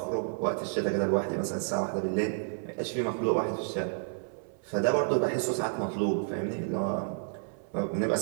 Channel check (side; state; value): left; silent; 57 dB below the other